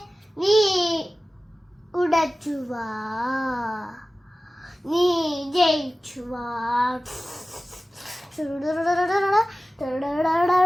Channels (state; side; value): normal; both; correlation 0.96